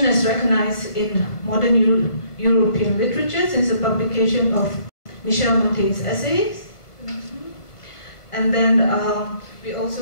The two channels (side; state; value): right; late; 1.4 ms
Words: as recognized in modern European literature since the publication of Michel Montaigne's essays. And then we